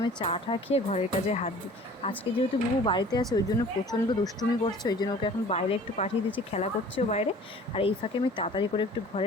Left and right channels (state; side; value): normal; both; correlation 0.47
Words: চাটা খেয়ে ঘরের কাজে হাত দিই। আজকে যেহেতু বুবু বাড়িতে আছে ওই জন্য প্রচণ্ড দুষ্টুমি করছে, ওই জন্য ওকে এখন বাইরে একটু পাঠিয়ে দিচ্ছি, খেলা করছেও বাইরে। আর এই ফাঁকে আমি তাড়াতাড়ি করে একটু